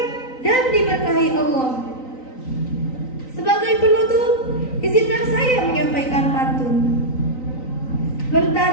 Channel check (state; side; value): late; right; 3.9 ms